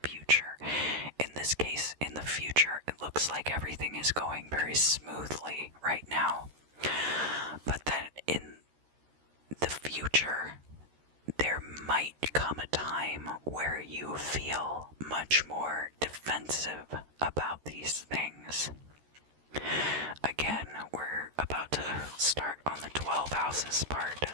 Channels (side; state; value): left; late; 13 ms